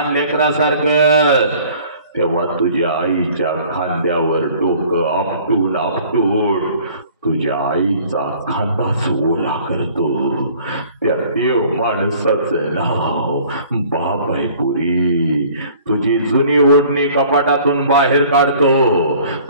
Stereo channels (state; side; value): inverted; both; correlation -0.52